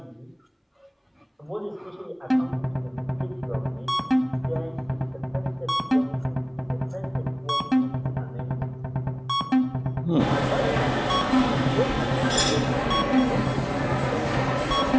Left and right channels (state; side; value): identical; both; correlation 1.00